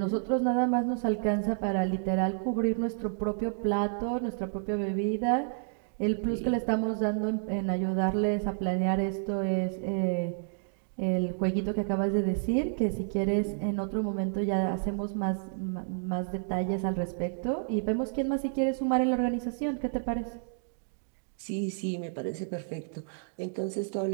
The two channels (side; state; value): left; silent; digital silence